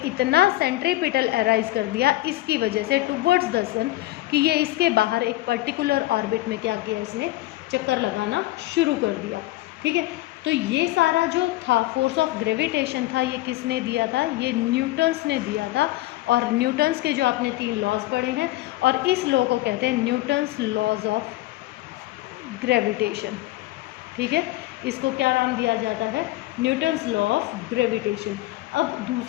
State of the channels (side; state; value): right; quieter; 17.9 dB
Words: इतना सेंट्रीपिटल अराइज कर दिया, इसकी वजह से टुवर्ड्स द सन, कि ये इसके बाहर एक पर्टिकुलर ऑर्बिट में क्या किया? इसने चक्कर लगाना शुरू कर दिया। ठीक है, तो ये सारा जो था फोर्स ऑफ ग्रेविटेशन था, ये किसने दिया था? ये न्यूटन्स ने दिया था। और न्यूटन्स के जो आपने 3 लॉज पढ़े हैं, और इस लॉ को कहते हैं न्यूटन्स लॉज ऑफ ग्रेविटेशन। ठीक है, इसको क्या नाम दिया जाता है? Newton's law of gravitation. अब